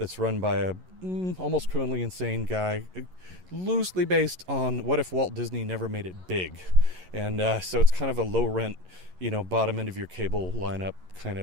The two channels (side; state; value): left; late; 11 ms